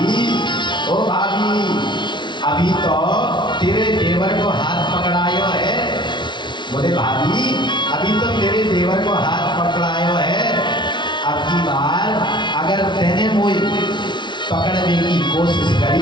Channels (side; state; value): right; late; 0.23 ms